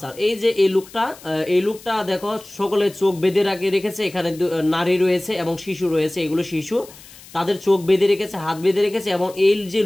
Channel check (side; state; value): left; noise; hiss, 20 dB below the sound